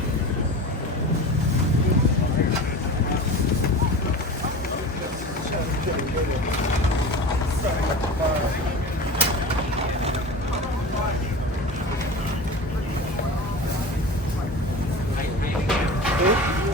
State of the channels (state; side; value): normal; both; correlation 0.33